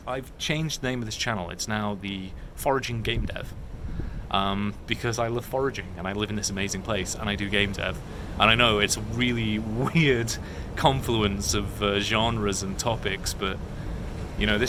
I've changed the name of this channel. It's now the Foraging Game Dev. Because I love foraging and I live in this amazing place and I do game dev. And I know it's a really weird confluence of genres and topics, but you know,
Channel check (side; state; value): both; identical; correlation 1.00